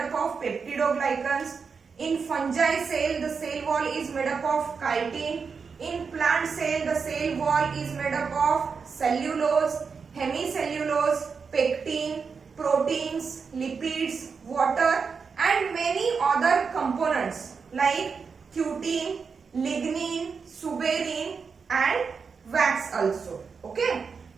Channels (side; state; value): left; quieter; 5.5 dB